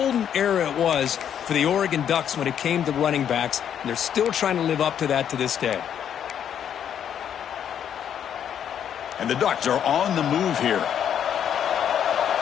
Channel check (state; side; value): quieter; right; 9.1 dB